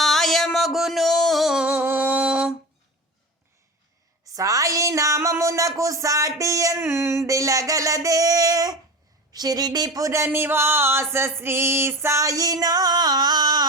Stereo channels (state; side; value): normal; both; correlation 0.30